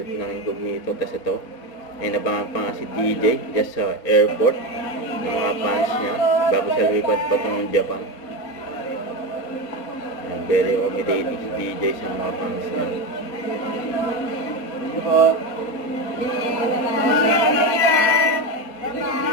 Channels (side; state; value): right; late; 4.2 ms